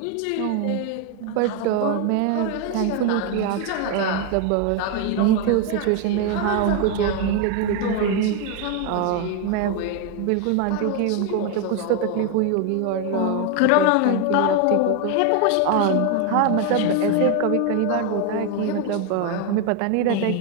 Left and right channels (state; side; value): different; both; correlation 0.01